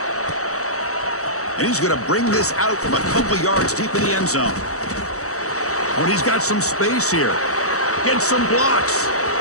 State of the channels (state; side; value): late; right; 0.65 ms